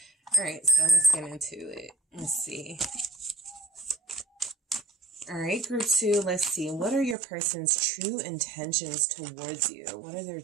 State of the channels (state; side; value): drops out; left; at 7.2 s